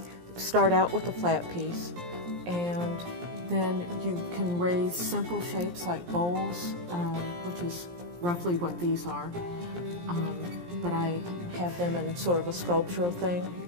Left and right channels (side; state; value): left; late; 17 ms